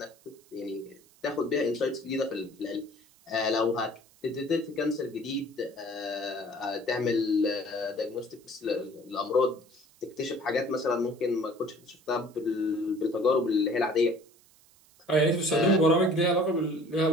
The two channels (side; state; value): right; noise; hiss, 29 dB below the sound